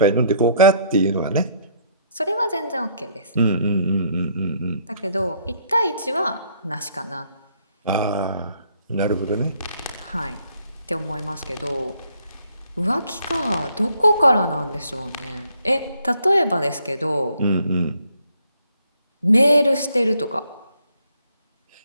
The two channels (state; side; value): inverted; both; correlation -0.67